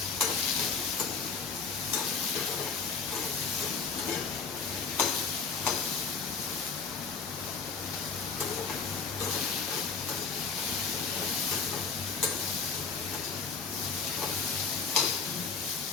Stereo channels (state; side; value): quieter; right; 4.9 dB